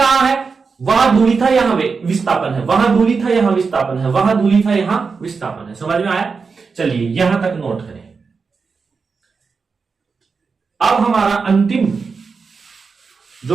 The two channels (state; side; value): quieter; left; 5.0 dB